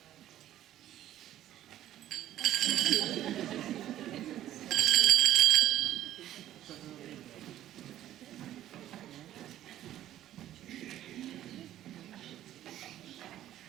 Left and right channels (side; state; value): left; quieter; 12.6 dB